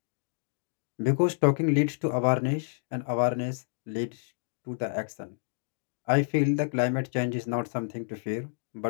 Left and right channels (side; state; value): right; silent; digital silence